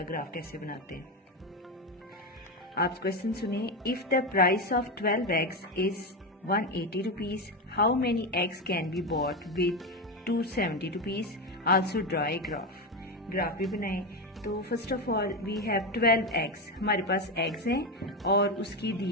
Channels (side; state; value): both; normal; correlation 0.14